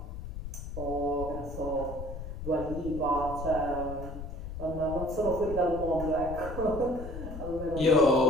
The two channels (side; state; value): left; noise; rumble, 8 dB below the sound